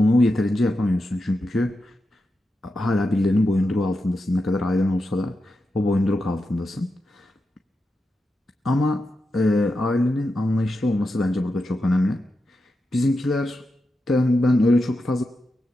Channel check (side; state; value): both; normal; correlation 0.88